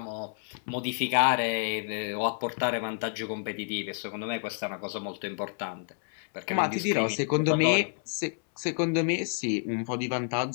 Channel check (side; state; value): right; silent; 58 dB below the other